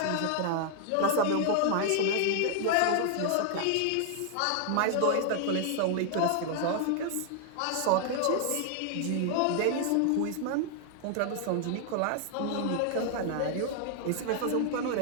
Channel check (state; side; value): different; both; correlation 0.00